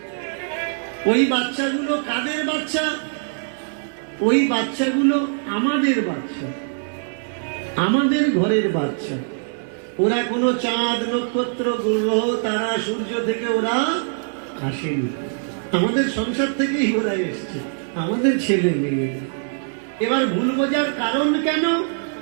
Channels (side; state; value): left; silent; digital silence